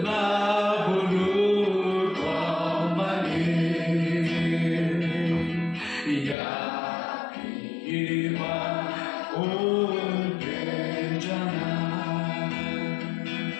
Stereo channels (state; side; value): drops out; right; at 6.4 s